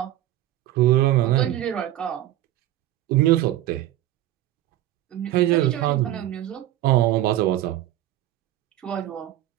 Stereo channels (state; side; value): quieter; left; 13.9 dB